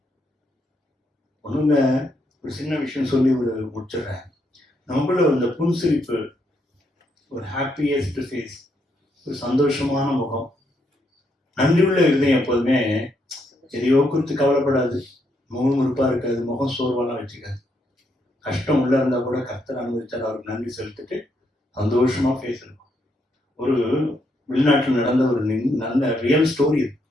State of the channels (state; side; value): normal; both; correlation 0.77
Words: ஒண்ணுங்க, ஒரு சின்ன விஷயம் சொல்லி முடிச்சிடுறேன். நமக்குள்ள இந்த புன்சிரிப்பு, ஒரு ஹாப்பியஸ்ட் ஃபேஸ், ஒரு சந்தோஷமான முகம், நன்றியுள்ள இருதயம் எப்போதுமே எதையோ குறித்து கவலைப்படாது, முகமுறுப்பா இருக்காது, முகம் சோர்வெல்லாம் வச்சுக்காது. கஷ்டம் உள்ள இருந்தா கூட கர்த்தர் அனுபவிச்சார், அவருக்கு நன்றி செலுத்திட்டு சந்தோஷமா ஃபேஸ் இருக்கும். ஒரு வெளிநாட்டில் நடந்த ஒரு நல்ல ரியல் ஸ்டோரி இது.